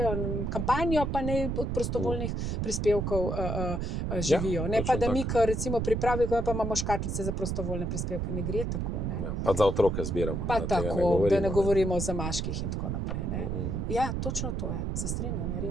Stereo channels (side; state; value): right; noise; rumble, 1 dB below the sound